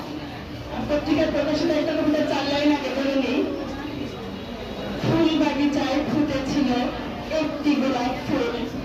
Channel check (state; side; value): identical; both; correlation 1.00